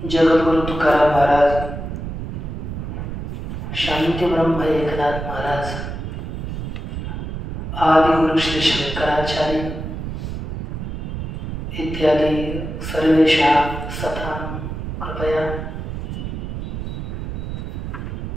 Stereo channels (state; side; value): noise; right; rumble, 5 dB below the sound